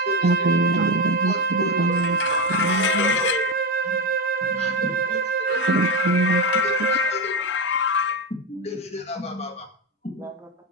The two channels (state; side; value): normal; both; correlation 0.14